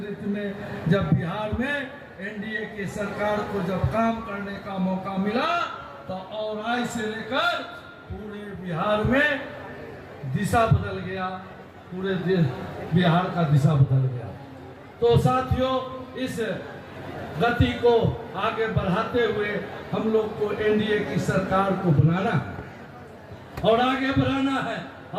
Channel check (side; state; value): both; identical; correlation 1.00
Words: में जब बिहार में एनडीए की सरकार को जब काम करने का मौका मिला तो औराई से लेकर पूरे बिहार में दिशा बदल गया, पूरे बिहार का दिशा बदल गया। तो साथियों, इस गति को आगे बढ़ाते हुए हम लोग को एनडीए की सरकार को बनाना है और आगे बढ़ाना है।